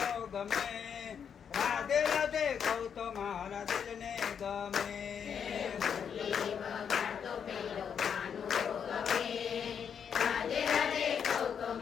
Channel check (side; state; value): right; quieter; 7.5 dB